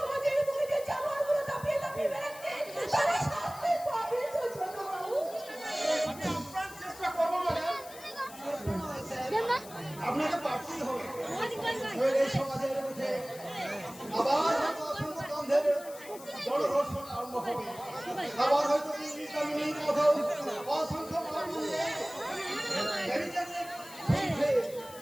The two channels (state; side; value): noise; left; hiss, 17 dB below the sound